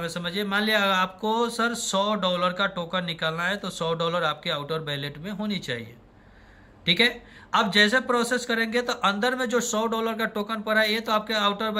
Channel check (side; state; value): both; identical; correlation 1.00